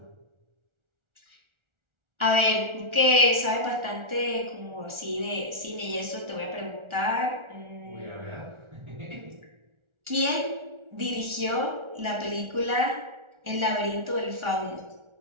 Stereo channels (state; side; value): late; left; 1.4 ms